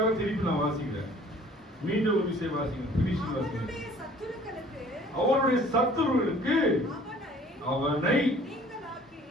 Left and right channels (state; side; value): normal; both; correlation 0.52